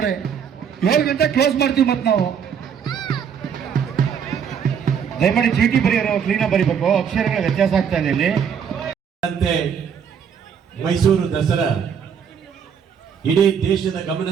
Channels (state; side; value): quieter; left; 7.5 dB